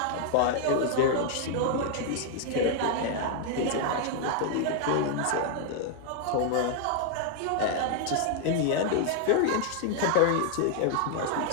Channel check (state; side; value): different; both; correlation 0.00